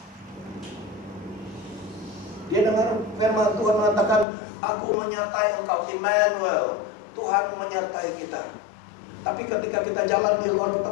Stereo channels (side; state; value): right; drops out; at 4.2 s